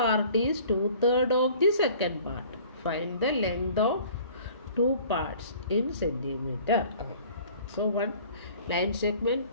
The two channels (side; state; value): both; inverted; correlation -0.50